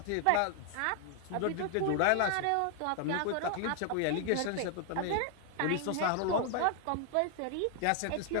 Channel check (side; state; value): both; different; correlation 0.00